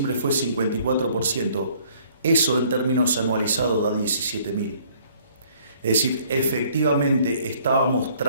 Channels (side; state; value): both; inverted; correlation -0.59